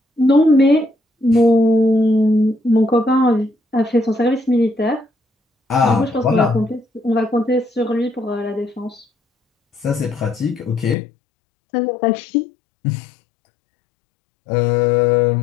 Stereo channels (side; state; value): right; drops out; at 11.0 s